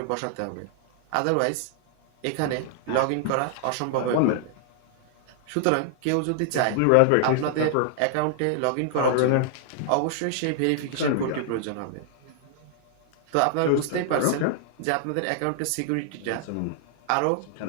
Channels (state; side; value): different; both; correlation -0.01